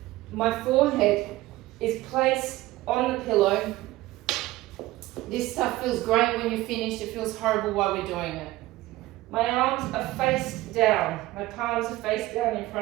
My forehead is placed on the pillow. This stuff feels great when you're finished. It feels horrible while we're doing it. My arms are face down. My palms are face down in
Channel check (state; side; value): quieter; left; 17.7 dB